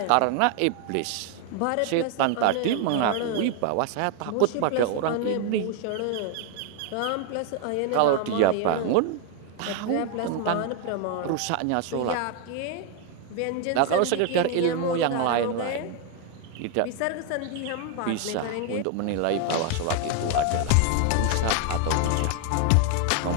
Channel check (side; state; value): both; different; correlation 0.01